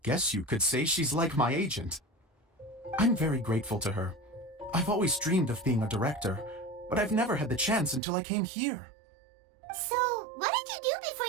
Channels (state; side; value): drops out; left; at 8.0 s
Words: guess you could say she's like my agent. I'm very grateful to her. I've always dreamed of being a director, but I've never had the chance until I came here. So, what did you do before